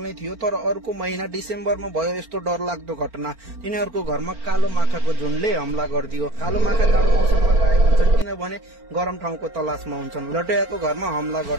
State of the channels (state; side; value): late; left; 4.4 ms